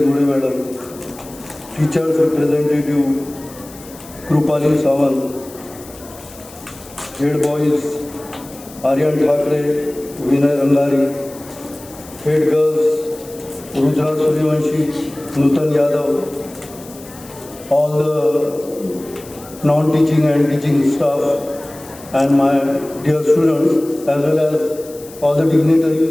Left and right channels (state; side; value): noise; left; hiss, 19 dB below the sound